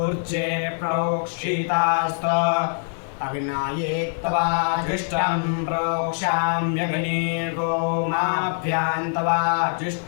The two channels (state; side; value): silent; right; 63 dB below the other